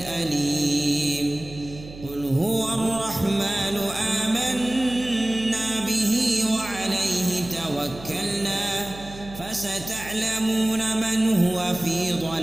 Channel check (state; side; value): noise; right; hum, 15 dB below the sound